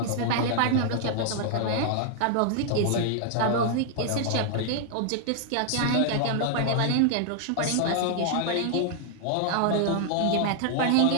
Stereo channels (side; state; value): both; different; correlation 0.00